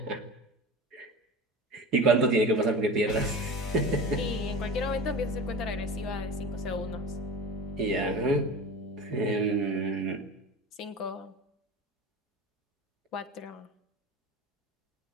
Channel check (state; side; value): normal; both; correlation 0.32